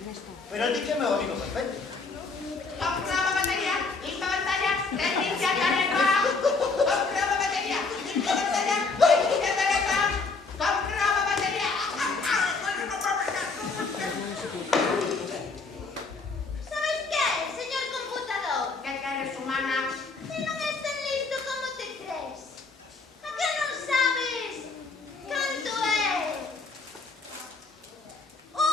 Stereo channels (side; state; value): right; quieter; 4.1 dB